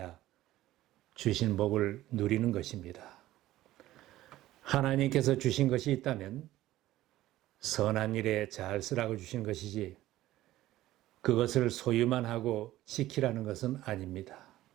주신 복을 누리는 것입니다. 하나님께서 주신 것이 있다면 선한 일에 잘 쓰라고 주신 것이지 그것을 소유만 하고 지키라는 것은 아닙니다.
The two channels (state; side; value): quieter; left; 15.3 dB